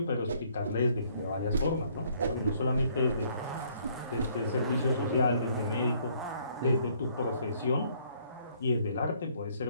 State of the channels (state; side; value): inverted; both; correlation -0.65